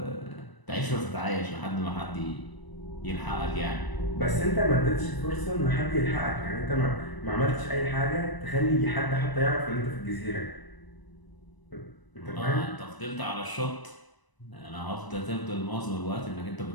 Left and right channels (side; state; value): right; late; 1.0 ms